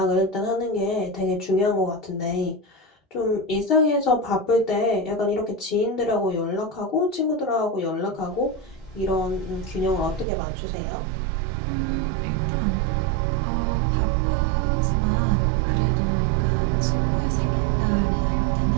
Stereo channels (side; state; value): left; drops out; at 10.2 s